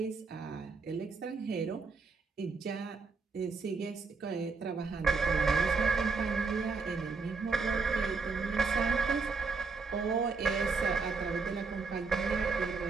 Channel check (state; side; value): quieter; left; 4.6 dB